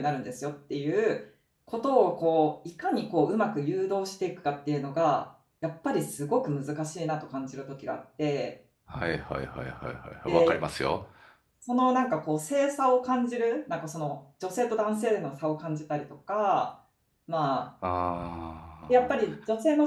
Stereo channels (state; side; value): identical; both; correlation 1.00